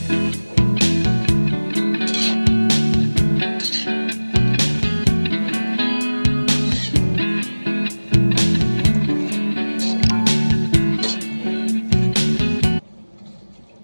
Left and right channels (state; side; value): inverted; both; correlation -1.00